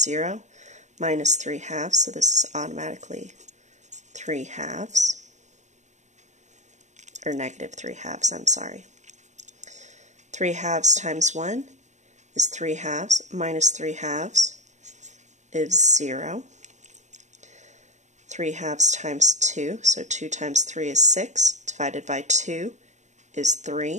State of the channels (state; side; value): late; left; 0.34 ms